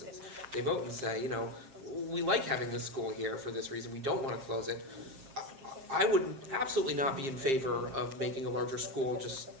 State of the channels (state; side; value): late; left; 7.4 ms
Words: They vote and say, we like having this school here for this reason, we don't want to close it. I would absolutely not be in favor of making a larger school just